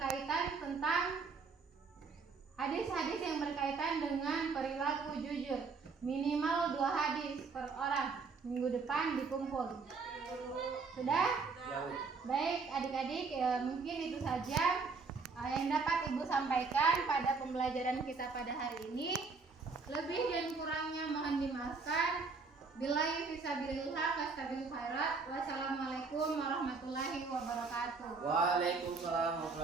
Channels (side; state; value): left; quieter; 4.6 dB